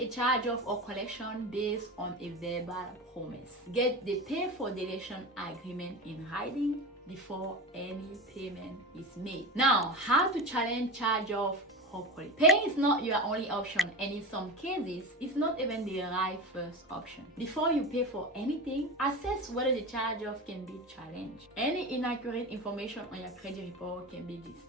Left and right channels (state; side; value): normal; both; correlation 0.26